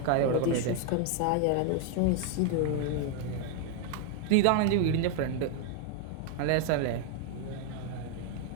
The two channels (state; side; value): different; both; correlation 0.00